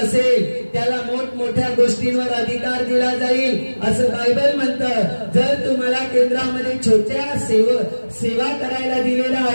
त्याला मोठमोठ्या गोष्टींवर अधिकार दिला जाईल, असं बायबल म्हणतं. जर तुम्हाला केंद्रामध्ये छोट्या सेवा करायला दिलेल्या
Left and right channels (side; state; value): both; inverted; correlation -1.00